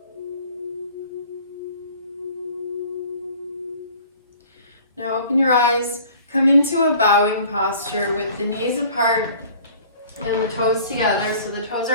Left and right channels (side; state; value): both; inverted; correlation -0.49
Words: Now open your eyes, come into a bowing posture with the knees apart and the toes together. So the toes